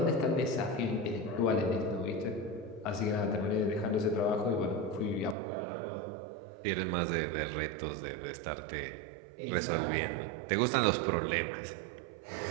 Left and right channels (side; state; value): left; drops out; at 5.4 s